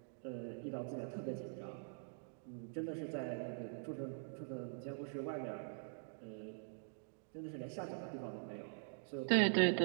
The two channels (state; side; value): silent; left; digital silence